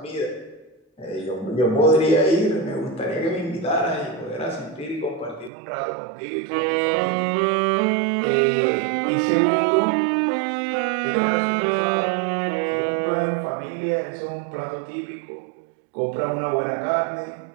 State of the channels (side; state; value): left; drops out; at 5.5 s